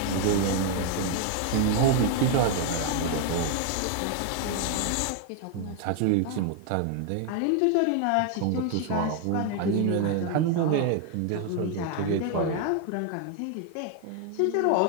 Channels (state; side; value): different; both; correlation 0.00